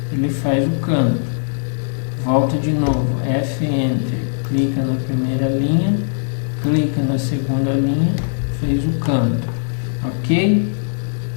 ele faz o canto. Volta de novo, F, Enter, clica na primeira linha, clica na segunda linha, fez o canto, ok?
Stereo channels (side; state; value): right; silent; digital silence